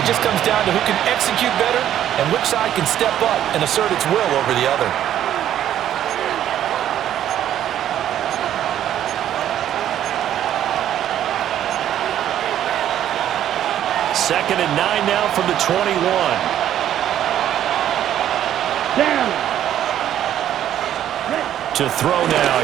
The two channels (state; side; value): quieter; left; 11.1 dB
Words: just comes down to who can execute better and which side can step up and assert its will over the other. Second and 9 now from the 21. Down. To throw now.